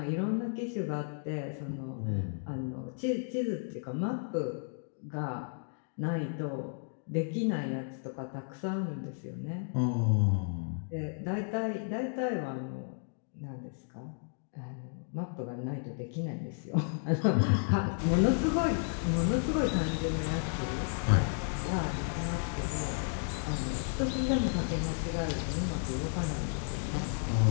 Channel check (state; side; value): silent; right; 56 dB below the other